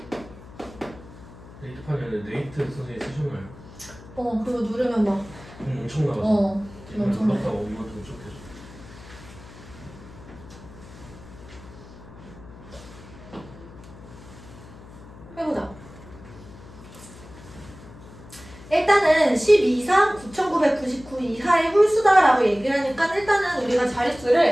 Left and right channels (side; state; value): left; noise; hum, 18 dB below the sound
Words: 네이트판에는 네이트 선생님 쓰셨나요? 그거 누르면 막 엄청 나가서 엄청 엄청 나가. 나갔다가 엄마한테 무척해서 해보자. 일단은 12 이상 9,999 이하의 홀수다라고 얘기를 하니까 일단은 우리가